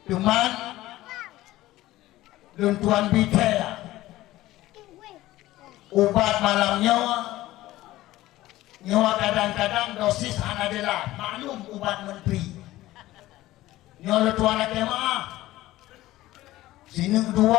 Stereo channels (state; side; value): quieter; right; 16.4 dB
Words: Cuman tuan bicara ubat malamnya nyawa kadang-kadang dosis adalah maklum ubat menteri nyawa tuan lagi maaf sini